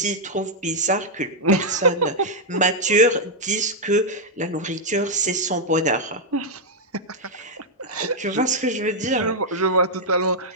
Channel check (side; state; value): both; normal; correlation -0.03